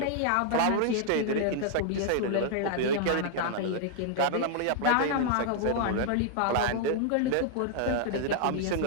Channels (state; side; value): different; both; correlation -0.01